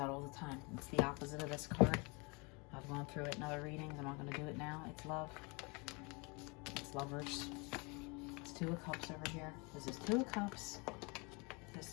all the time. It's the opposite of this card. I've gone through it in other readings. I'm not going to do it now. It's love. It's lovers. It's Two of Cups over here. This is Two of Cups.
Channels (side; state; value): right; quieter; 29.7 dB